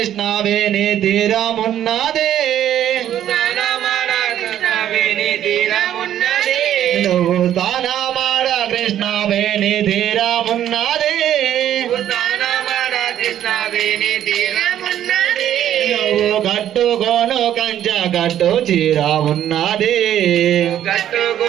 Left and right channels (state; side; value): quieter; left; 11.1 dB